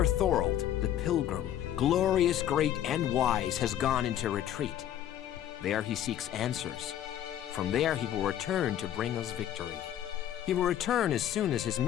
Thorold, the pilgrim, glorious, great, and wise, has gone into retreat. There he seeks answers. From there he will return to bring us victory. He will return as soon as his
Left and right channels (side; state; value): right; quieter; 11.3 dB